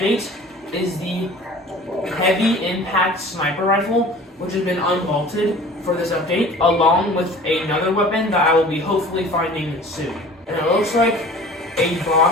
is the heavy impact sniper rifle, which has been unvaulted for this update, along with another weapon that I will be hopefully finding soon. And it looks like a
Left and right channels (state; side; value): normal; both; correlation 0.44